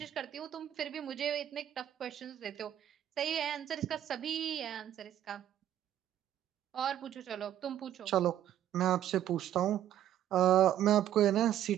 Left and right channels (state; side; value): quieter; left; 11.3 dB